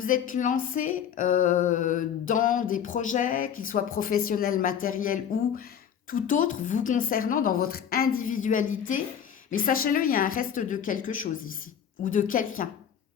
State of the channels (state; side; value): quieter; right; 8.6 dB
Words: êtes lancé dans des projets, qu'ils soient professionnels, matériels ou tout autre, vous concernant dans votre individualité. Mais sachez-le, il y a un reste de quelque chose ici, ou de quelqu'un